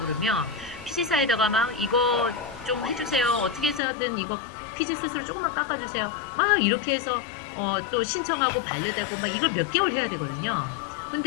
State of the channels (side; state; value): right; drops out; at 3.8 s